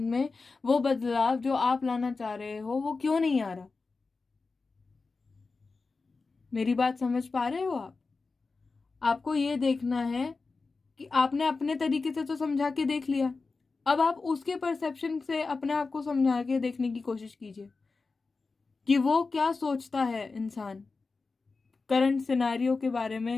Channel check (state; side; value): quieter; right; 4.1 dB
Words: में वो बदलाव जो आप लाना चाह रहे हो वो क्यों नहीं आ रहा। मेरी बात समझ पा रहे हो आप? आपको ये देखना है कि आपने अपने तरीके से तो समझा के देख लिया, अब आप उसके परसेप्शन से अपने आप को समझा के देखने की कोशिश कीजिए कि वो क्या सोचता है इंसान करंट सिनेरियो के बारे